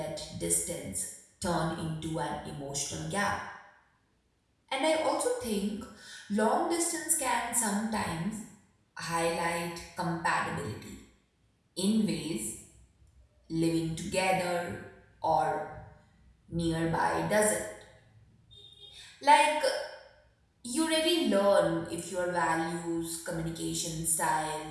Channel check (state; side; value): identical; both; correlation 1.00